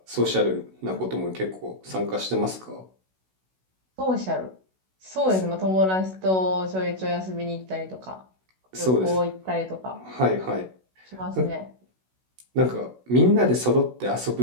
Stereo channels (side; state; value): left; late; 16 ms